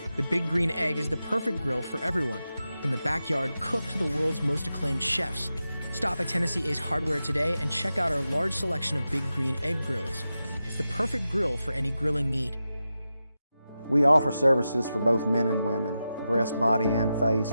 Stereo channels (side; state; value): both; inverted; correlation -0.91